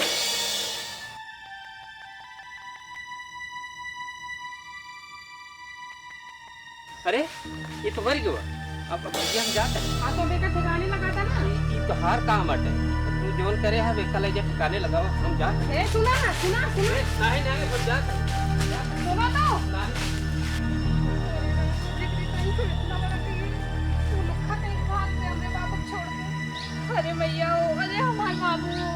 अरे ये तो मर गया, अब भैया हम जाते हैं। हाँ तो बेटा ठिकाने लगाता ना, ये तो हर काम अटे, तू जोन करे है बेटा ले जा ठिकाने लगाओ, हम जाते हैं। सुना ना, सुना नहीं नहीं हम जाते हैं। सुनो तो अरे मैया, अरे हमारे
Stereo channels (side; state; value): both; identical; correlation 1.00